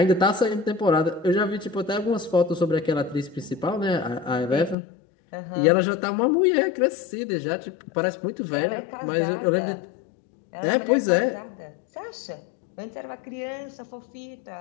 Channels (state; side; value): drops out; right; at 4.8 s